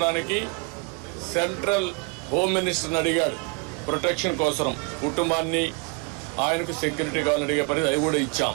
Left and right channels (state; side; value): quieter; left; 31.8 dB